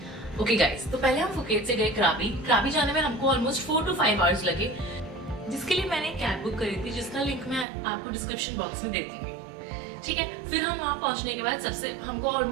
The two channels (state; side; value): drops out; left; at 7.7 s